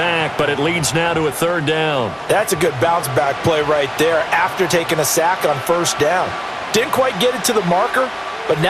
but it leads now to a 3rd down. That's a good bounce back play right there after taking a sack on 1st down. Didn't quite get it to the marker, but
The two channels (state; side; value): identical; both; correlation 1.00